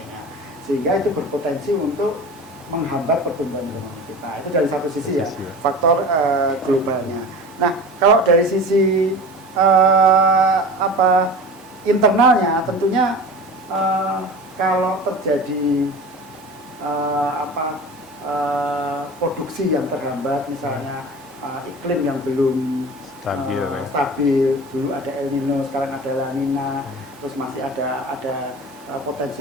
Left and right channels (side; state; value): both; normal; correlation 0.35